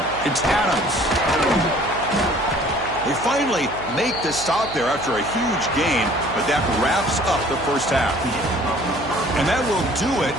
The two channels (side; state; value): right; noise; hum, 14 dB below the sound